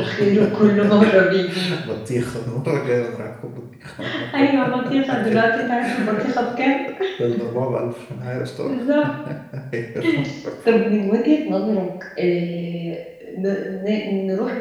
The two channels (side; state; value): both; identical; correlation 1.00